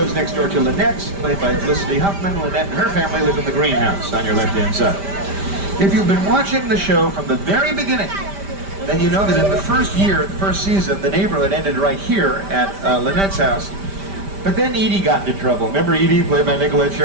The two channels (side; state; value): left; late; 5.1 ms